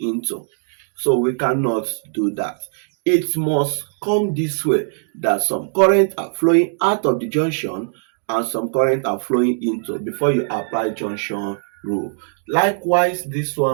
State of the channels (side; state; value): left; silent; digital silence